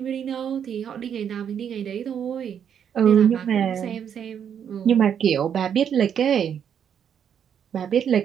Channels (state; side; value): quieter; left; 8.4 dB